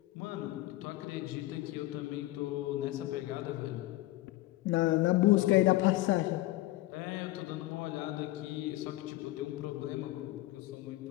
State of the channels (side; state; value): right; quieter; 17.8 dB